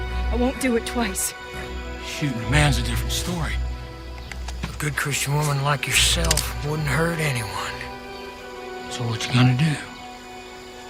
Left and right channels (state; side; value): identical; both; correlation 1.00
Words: won't do it twice. Shooting a man's a different story. A good Christian woman like yourself wouldn't hurt anyone. So what you gonna do?